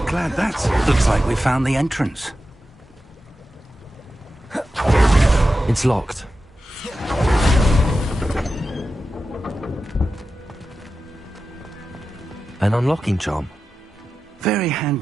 Glad that's... Looks like we found the entrance. It's locked. An unlocking charm. Very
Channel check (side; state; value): both; normal; correlation 0.92